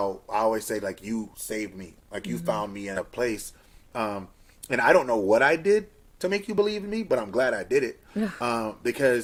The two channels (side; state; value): both; identical; correlation 1.00